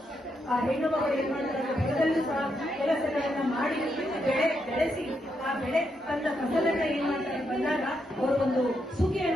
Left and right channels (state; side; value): normal; both; correlation 0.81